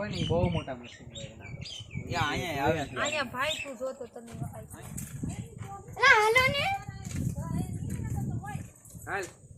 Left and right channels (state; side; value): identical; both; correlation 1.00